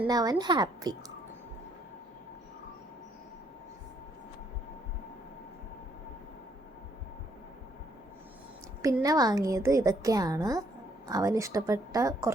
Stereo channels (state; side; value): normal; both; correlation 0.69